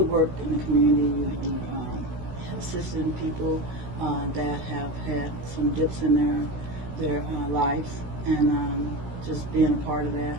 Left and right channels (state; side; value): late; left; 16 ms